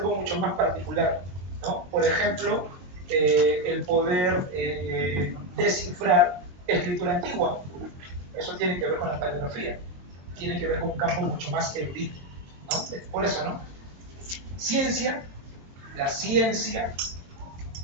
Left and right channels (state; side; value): late; left; 22 ms